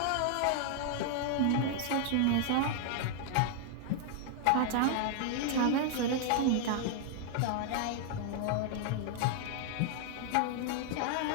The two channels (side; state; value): both; different; correlation 0.00